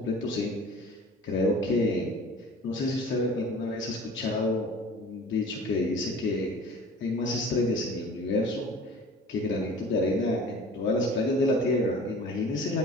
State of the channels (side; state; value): both; normal; correlation 0.43